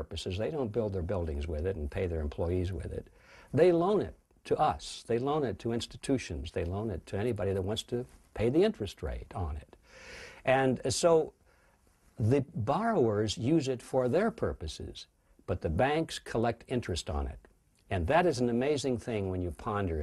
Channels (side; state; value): both; identical; correlation 1.00